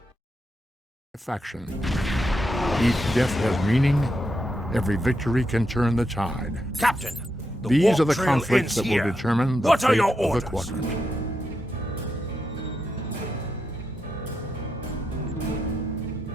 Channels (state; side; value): normal; both; correlation 0.84